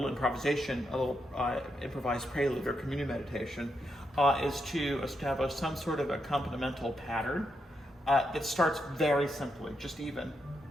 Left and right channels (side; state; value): both; normal; correlation 0.82